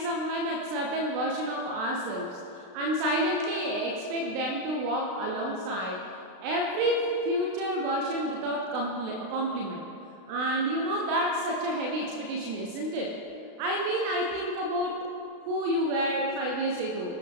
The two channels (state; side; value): late; left; 36 ms